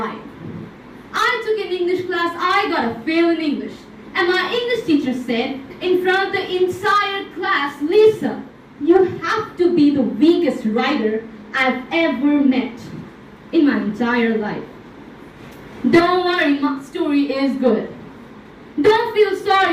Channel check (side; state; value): both; identical; correlation 1.00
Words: I took an English class, I got a fail in English. And my English teacher said, in front of the entire class, Lisa, you have to be the weakest writer I've ever met in my entire life. Don't worry, my story is good. Don't feel